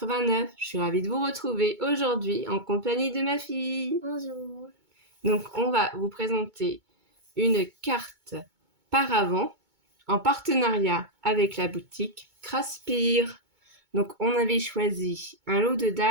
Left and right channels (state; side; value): late; left; 2.2 ms